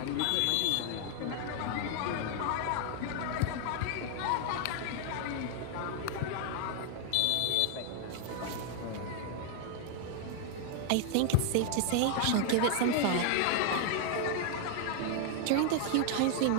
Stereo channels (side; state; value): both; different; correlation 0.00